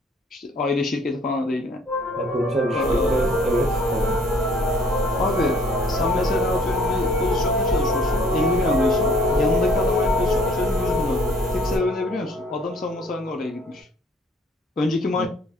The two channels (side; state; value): both; normal; correlation 0.58